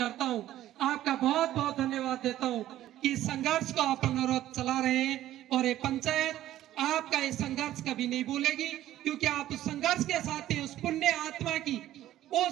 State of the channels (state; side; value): quieter; left; 13.4 dB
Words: हूं। आपका बहुत बहुत धन्यवाद देता हूं कि संघर्ष को आप अनुरोध चला रहे हैं और ये पंचायत आपका ये संघर्ष कभी नहीं भूलेगी, क्योंकि आप उस संघर्ष के साथ ही उस पुण्य आत्मा की